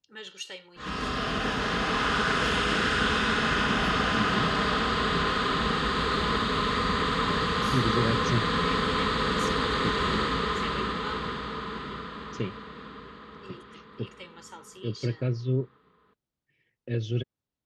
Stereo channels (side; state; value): both; identical; correlation 1.00